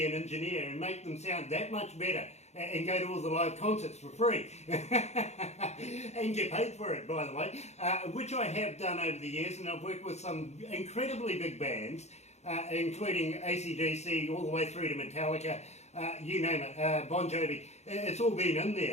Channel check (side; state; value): right; late; 0.32 ms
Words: an engineer and make them sound that much better and go to all the live concerts for free. And get paid for it, by the way, which I have done over the years, and I've worked with some incredibly big bands, including AC/DC all the way through to Metallica. You name it, Bon Jovi. It's all been in